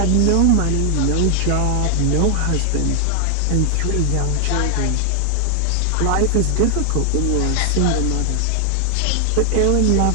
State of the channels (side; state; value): both; different; correlation 0.00